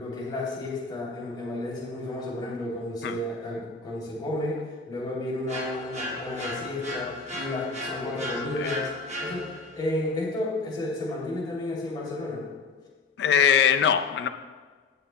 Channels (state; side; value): quieter; right; 4.3 dB